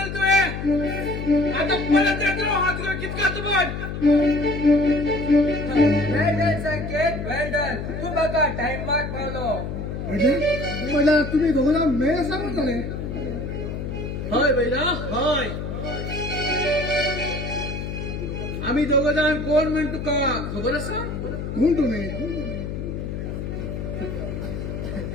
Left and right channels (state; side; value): noise; left; hum, 5 dB below the sound